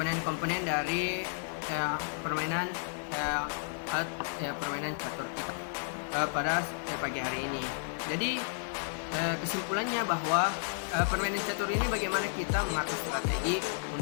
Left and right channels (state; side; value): silent; right; digital silence